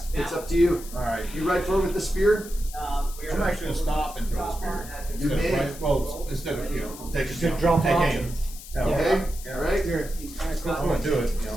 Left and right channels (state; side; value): noise; left; hiss, 15 dB below the sound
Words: It's up to you. All right. You ride forward with the spear. I'm actually gonna stop and throw the spear. You Instead may. of well, instead of take drop off. aim. Okay. All right. I'm gonna do it.